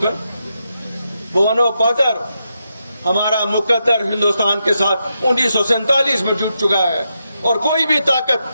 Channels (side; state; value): both; inverted; correlation -0.85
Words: بہ ونو پتر ہمارا مقدر ہندوستان کے ساتھ 1947 میں جٹ چکا ہے اور کوئی بھی طاقت